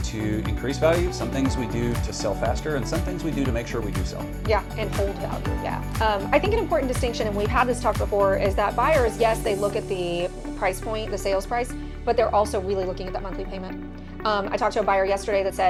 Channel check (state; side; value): identical; both; correlation 1.00